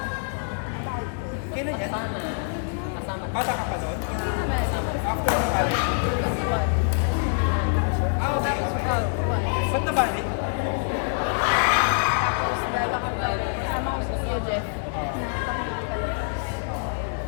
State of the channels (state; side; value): silent; right; digital silence